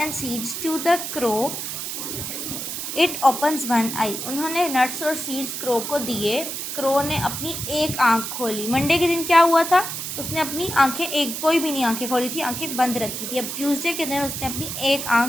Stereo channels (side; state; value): right; noise; hiss, 5 dB below the sound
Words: seeds to the crow. It opens one eye. उन्होंने नट्स और सीड्स क्रो को दिए. क्रो ने अपनी एक आँख खोली. मंडे के दिन क्या हुआ था, उसने अपनी आंखें कोई भी नहीं आंखें खोली थी, आंखें बंद रखी थी. अब ट्यूसडे के दिन उसने अपनी एक